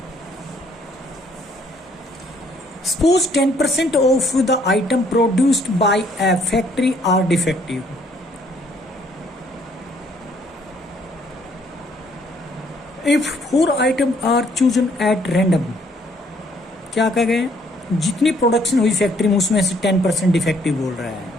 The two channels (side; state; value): both; normal; correlation 0.65